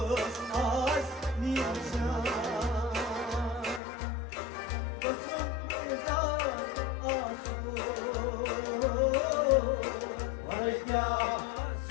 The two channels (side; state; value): right; drops out; at 3.8 s